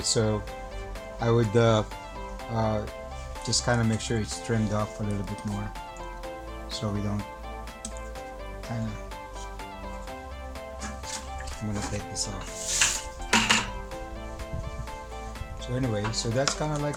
so I would just kind of make sure it's trimmed off a little bit more, so we don't kind of. I'm gonna take this off. So anyway, so that's kind of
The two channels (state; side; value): identical; both; correlation 1.00